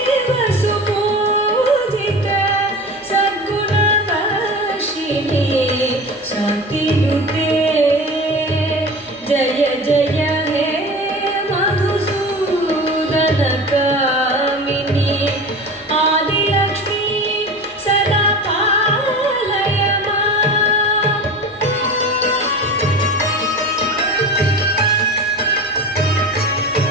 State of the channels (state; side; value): normal; both; correlation 0.33